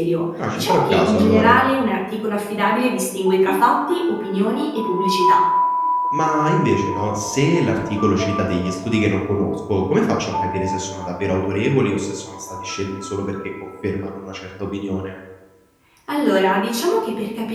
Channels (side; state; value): both; identical; correlation 1.00